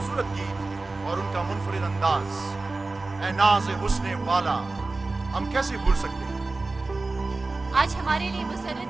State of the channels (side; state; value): left; quieter; 3.4 dB